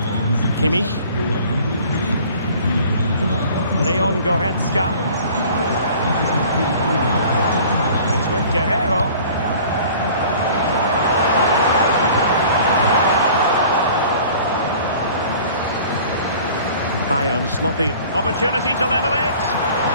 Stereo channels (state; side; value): inverted; both; correlation -0.48